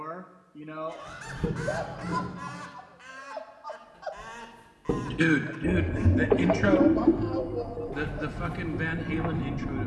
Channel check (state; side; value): identical; both; correlation 1.00